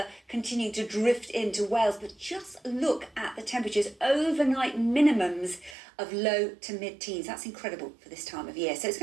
continuing to drift into Wales, but just look at the temperatures. Overnight minimums of low to mid-teens. That's incredible for this time of year. So it's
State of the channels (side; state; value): left; drops out; at 5.8 s